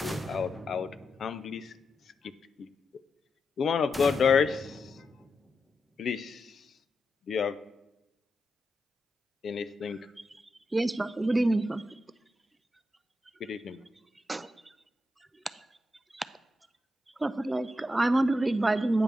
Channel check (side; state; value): both; normal; correlation 0.87